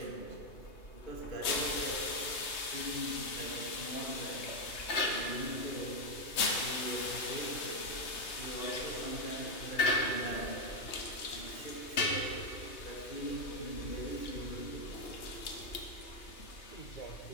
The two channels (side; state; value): right; late; 3.2 ms